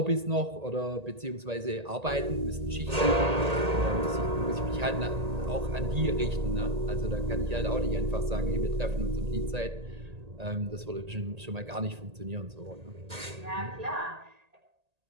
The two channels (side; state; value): left; late; 1.8 ms